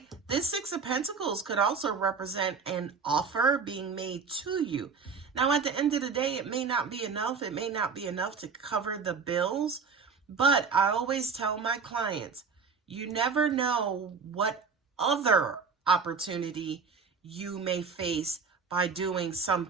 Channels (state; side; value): quieter; left; 5.4 dB